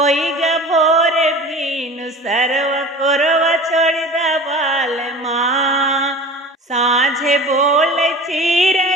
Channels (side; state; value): both; normal; correlation 0.38